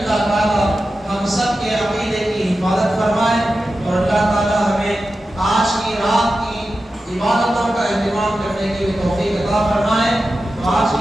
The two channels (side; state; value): both; normal; correlation 0.92